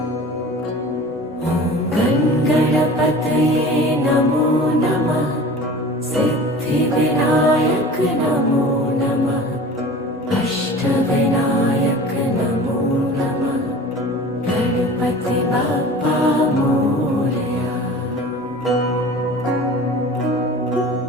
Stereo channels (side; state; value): both; normal; correlation 0.40